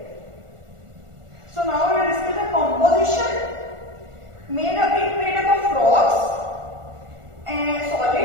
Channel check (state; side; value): late; left; 1.4 ms